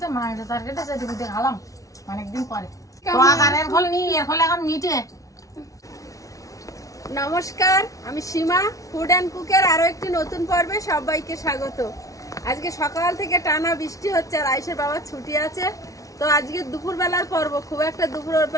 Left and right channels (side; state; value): right; late; 0.17 ms